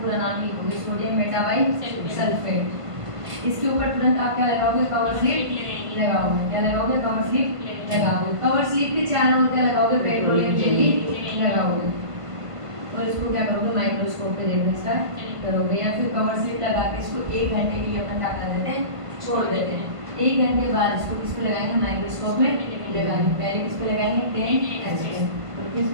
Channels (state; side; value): late; left; 1.5 ms